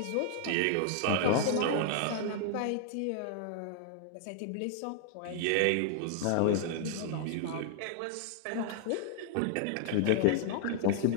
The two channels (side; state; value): both; different; correlation 0.00